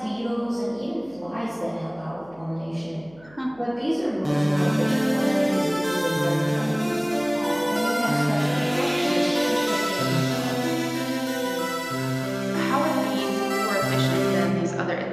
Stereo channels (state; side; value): noise; right; hum, 26 dB below the sound